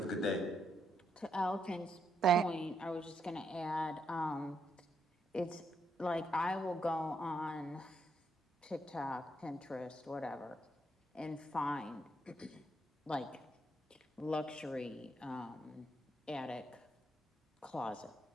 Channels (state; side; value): normal; both; correlation 0.78